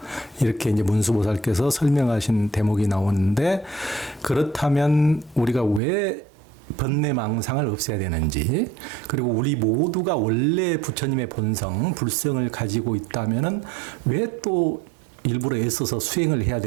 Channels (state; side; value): drops out; left; at 5.8 s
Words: 이렇게 이제 문수보살께서 설명하신 대목이 나오는데 그렇다면 우리가 왜 번뇌망상을 없애야 되는지 그리고 우리 모두가 원래 부처님의 본성, 불성을 가지고 있다면은 왜 또 일부러 애써서 수행을 해야